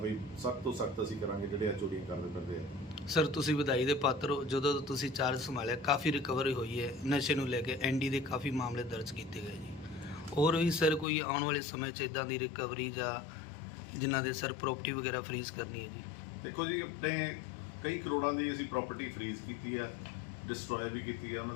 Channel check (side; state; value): right; drops out; at 11.1 s